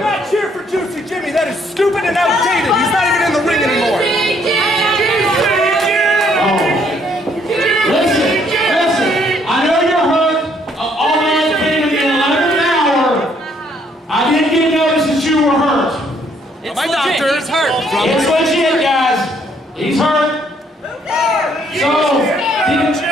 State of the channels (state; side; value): normal; both; correlation 0.67